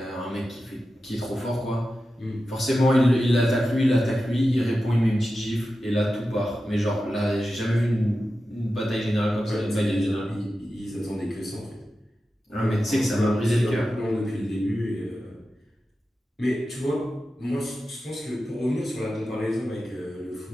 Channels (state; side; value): normal; both; correlation 0.92